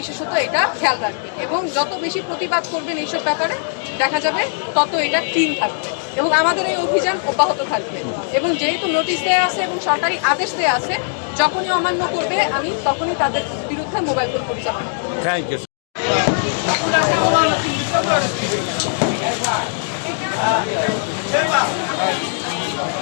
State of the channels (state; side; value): silent; right; 65 dB below the other